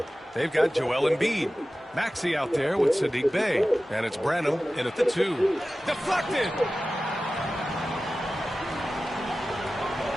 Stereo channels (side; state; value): both; normal; correlation 0.95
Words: They've got Joel Embiid. Maxey out there with Sadiq Bey. And it's Branham in at the 2. Deflected!